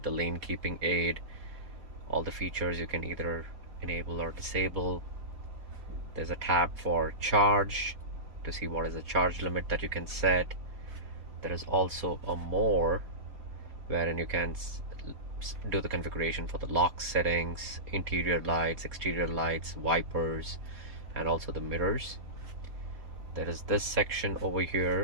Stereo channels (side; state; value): left; late; 4.2 ms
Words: the lane keeping aid, all the features you can either enable or disable. There's a tab for charge to see what is the charge limit that you can set. There is also a more, wherein you can do the configuration for the lock settings, interior lights, exterior lights, wipers, and also the mirrors. There is this section over